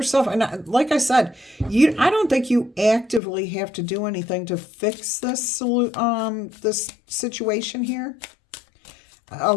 And like I said, I don't think you actively have to do anything to fix this situation here. A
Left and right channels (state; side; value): drops out; right; at 3.2 s